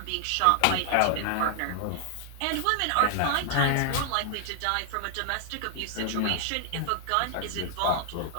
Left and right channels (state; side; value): different; both; correlation 0.00